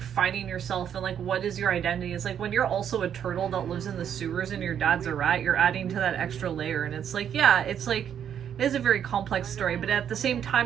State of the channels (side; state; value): left; quieter; 8.9 dB